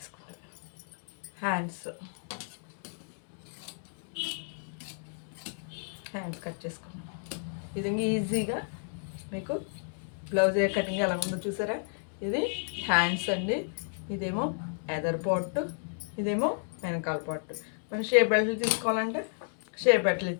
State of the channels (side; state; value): right; silent; digital silence